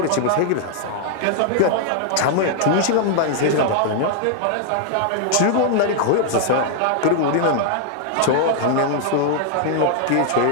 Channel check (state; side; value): different; both; correlation 0.00